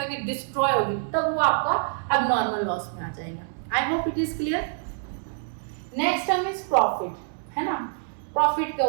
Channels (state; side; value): silent; left; 59 dB below the other